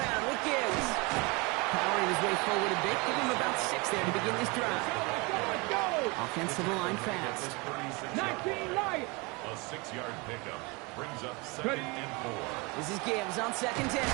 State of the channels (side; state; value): left; quieter; 27.6 dB